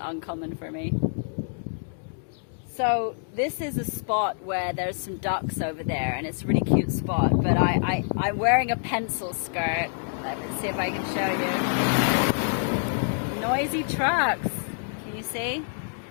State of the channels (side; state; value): right; silent; digital silence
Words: uncommon for me. So this is a spot where there's some ducks over there, and it's a really cute spot, but I'm wearing a pencil skirt. Let me see if I can show you. Noisy trucks, can you see?